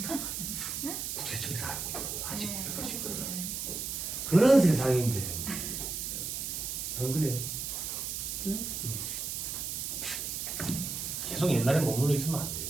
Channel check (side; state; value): right; noise; hiss, 4 dB below the sound